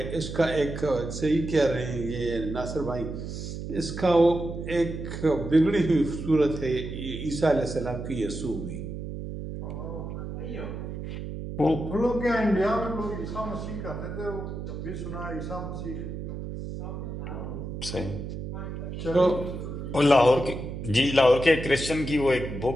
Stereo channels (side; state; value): right; noise; hum, 7 dB below the sound